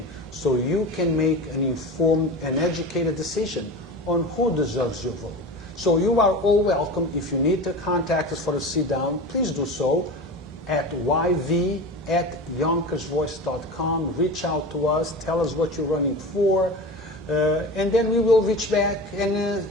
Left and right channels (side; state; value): both; normal; correlation 0.30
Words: so you can make an informed and educated decision on who deserves your vote. So you are all welcome. If you need to contact us for a sit-down, please do so at yv@yonkersvoice.com. Reach out to us, tell us what you're running for, and then we will reach back and